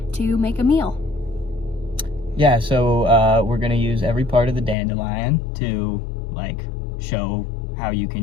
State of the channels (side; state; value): right; drops out; at 4.8 s